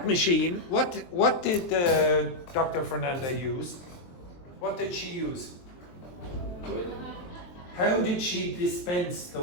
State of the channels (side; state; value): right; late; 23 ms